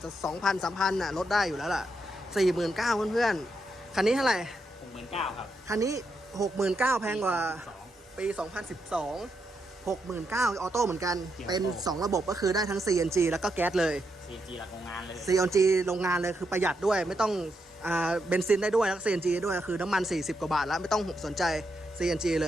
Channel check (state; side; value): normal; both; correlation 0.82